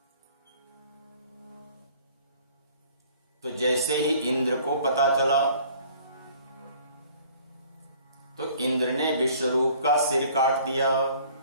तो जैसे ही इंद्र को पता चला तो इंद्र ने विश्वरूप का सिर काट दिया।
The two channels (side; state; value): both; inverted; correlation -0.54